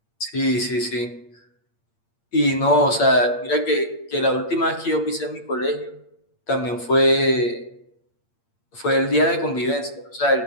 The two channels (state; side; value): late; right; 8.6 ms